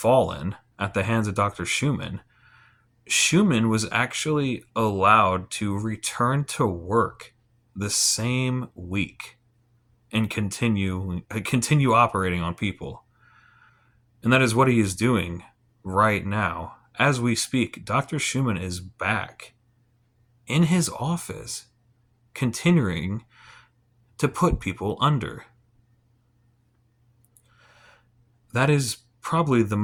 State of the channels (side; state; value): both; identical; correlation 1.00